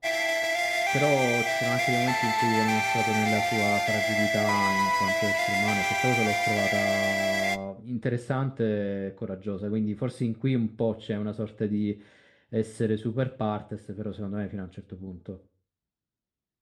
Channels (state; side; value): identical; both; correlation 1.00